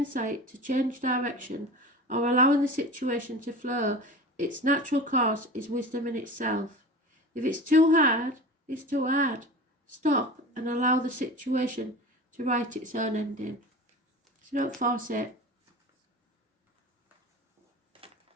to change direction or allowing the situation to flow its natural course is wisdom in itself. If it's too hard, it's too hard. Stop and allow the situation to write its own ending. So don't force it.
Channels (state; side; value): normal; both; correlation 0.33